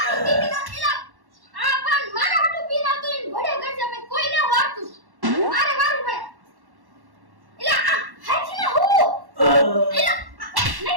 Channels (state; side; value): late; left; 1.1 ms